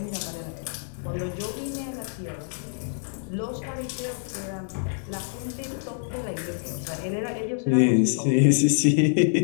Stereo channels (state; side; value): silent; right; digital silence